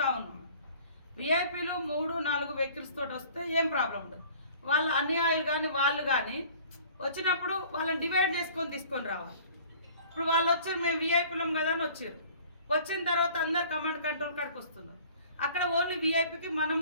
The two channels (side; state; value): both; inverted; correlation -0.49